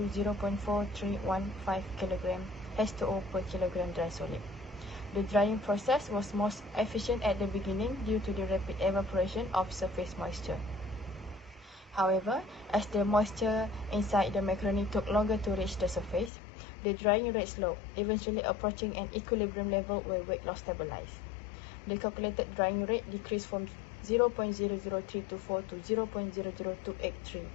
0.4315 kg H2O per kilogram dry solid. The drying process was most efficient at the beginning due to the rapid evaporation of surface moisture. However, as the moisture inside the macaroni took longer to reach the surface, the drying rate slowed, eventually approaching an equilibrium level where weight loss stabilized. The calculated drying rate decreased from 0.00324 to 0.00283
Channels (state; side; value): drops out; right; at 16.3 s